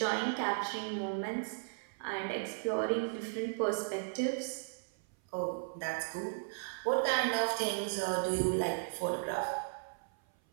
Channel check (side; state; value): left; silent; 54 dB below the other